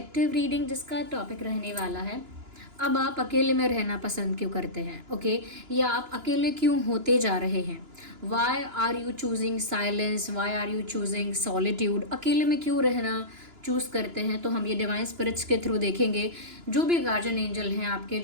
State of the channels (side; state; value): left; late; 2.9 ms